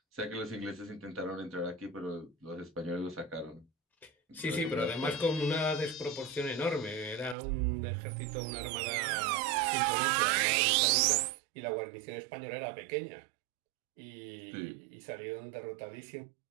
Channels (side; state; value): left; drops out; at 7.4 s